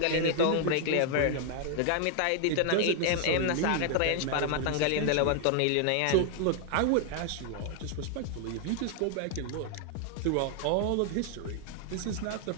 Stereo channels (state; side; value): different; both; correlation 0.00